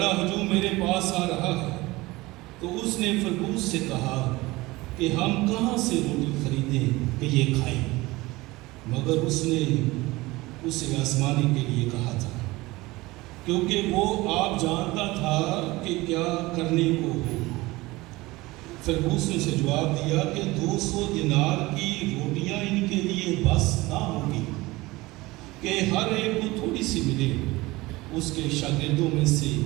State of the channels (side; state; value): left; quieter; 20.7 dB